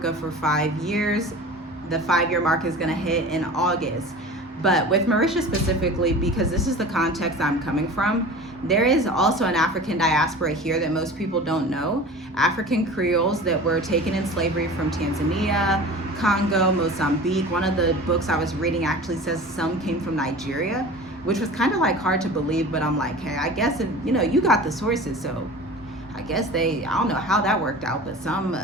for 5 years. The 5-year mark is going to hit in August. But with Mauritius specifically, because this is the context I'm coming from, there is also an African diaspora here that most people don't know. African Creoles that were taken in slavery from Tanzania, Congo, Mozambique. One of the books I was reading actually says some came from Nigeria, which was kind of like hard to believe, but I'm like, hey, I guess if, you got the sources, so I guess I don't know how that worked out, but some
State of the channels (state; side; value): normal; both; correlation 0.38